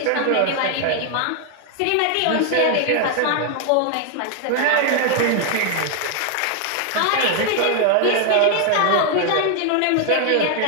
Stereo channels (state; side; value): different; both; correlation 0.00